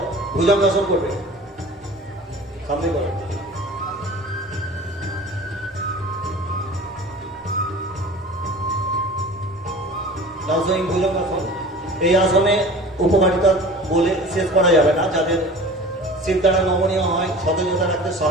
ভুজঙ্গাসন করবে। সামনে করো। নাউজুইং ভুজঙ্গাসন। এই আসনে উপকারিতা বলে শেষ করা যাবে না। যাদের শির দ্বারা নমনীয় হয়, সতেজতা রাখতে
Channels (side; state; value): both; normal; correlation 0.40